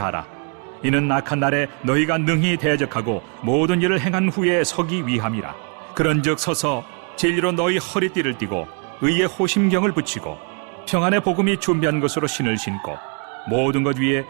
이는 악한 날에 너희가 능히 대적하고 모든 일을 행한 후에 서기 위함이라. 그런즉 서서 진리로 너희 허리띠를 띠고 의의 호심경을 붙이고 평안의 복음이 준비한 것으로 신을 신고 모든 것 위에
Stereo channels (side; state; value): left; quieter; 38.8 dB